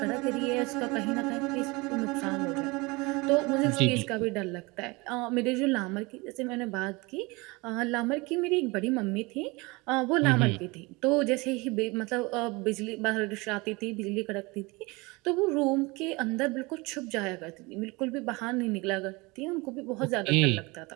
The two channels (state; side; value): quieter; left; 25.1 dB